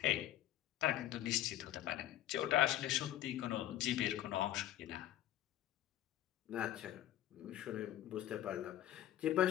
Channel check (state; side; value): quieter; right; 13.0 dB